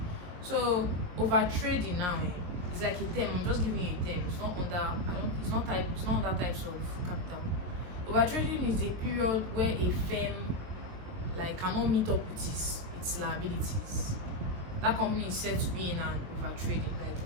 So over trading now, it's like a term. I'm just giving you a term. It's not under types of capital. Over trading is a period where a firm like cannot meet up with its liabilities. That company is said to be in an over trading. Like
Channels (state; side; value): late; left; 22 ms